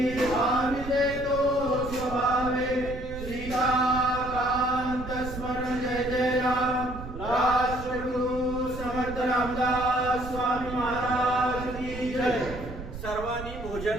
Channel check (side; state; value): right; noise; rumble, 11 dB below the sound